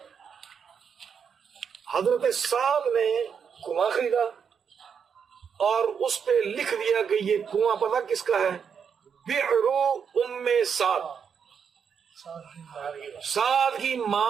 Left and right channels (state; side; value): quieter; left; 6.9 dB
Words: حضرت سعد نے کنواں خریدا اور اس پہ لکھ دیا کہ یہ کنواں پتہ کس کا ہے؟ بئر ام سعد, سعد کی